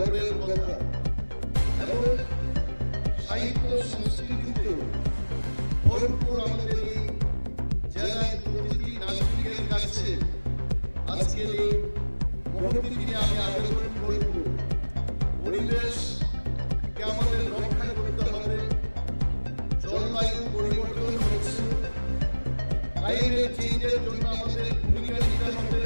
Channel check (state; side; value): inverted; both; correlation -1.00